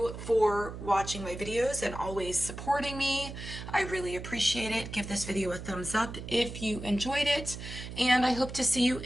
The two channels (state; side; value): noise; right; hum, 10 dB below the sound